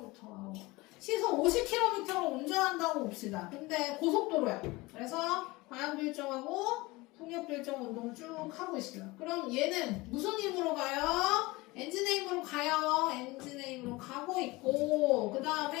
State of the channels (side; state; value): right; quieter; 22.0 dB